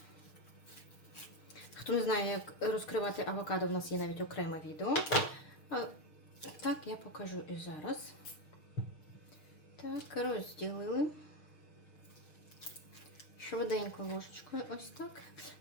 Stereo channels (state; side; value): late; right; 6.5 ms